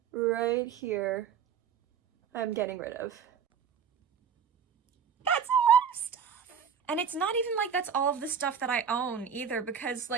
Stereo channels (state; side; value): quieter; left; 7.2 dB